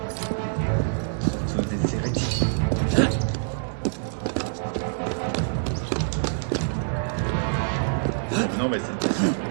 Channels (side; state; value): left; silent; digital silence